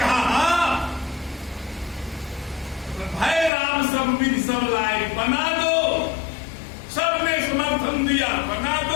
हाँ, भय राम सब विधि सब लायक बना दो। सबने समर्थन दिया, बना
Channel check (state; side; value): drops out; right; at 3.5 s